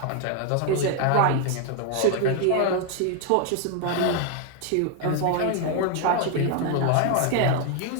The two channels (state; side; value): different; both; correlation 0.00